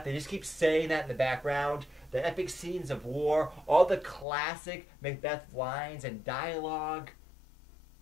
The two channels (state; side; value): drops out; right; at 4.2 s